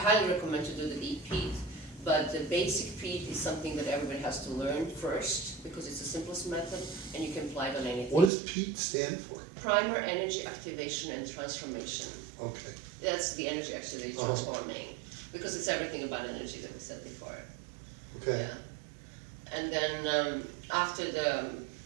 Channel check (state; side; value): drops out; left; at 8.3 s